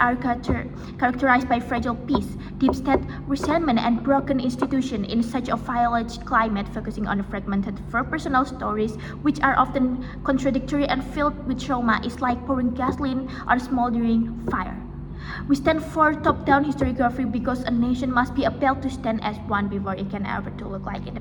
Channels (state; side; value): identical; both; correlation 1.00